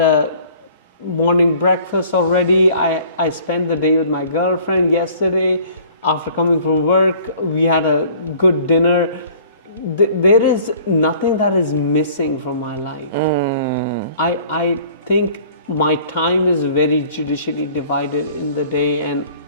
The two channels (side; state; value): both; inverted; correlation -0.52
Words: morning breakfast already. I spent the day with my girlfriend yesterday. After coming from work, we had a good dinner. There is nothing that is missing from my life. I think my time is very judicially divided in the day, and